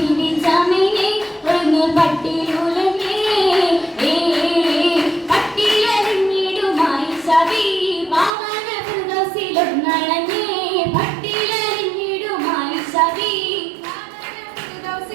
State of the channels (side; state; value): left; drops out; at 8.3 s